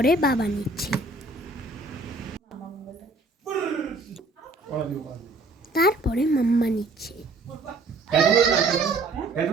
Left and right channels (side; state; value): left; quieter; 3.2 dB